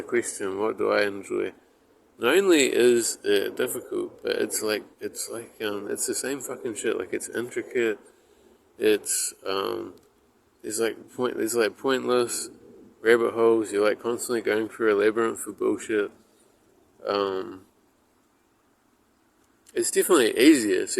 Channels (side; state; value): both; identical; correlation 1.00